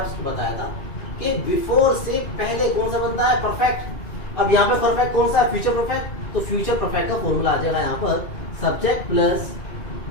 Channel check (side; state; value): right; late; 2.4 ms